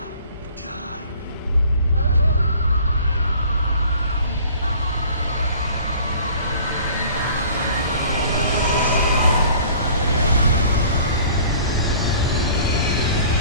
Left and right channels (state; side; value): inverted; both; correlation -0.49